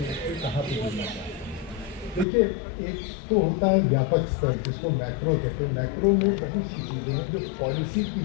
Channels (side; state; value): right; drops out; at 2.2 s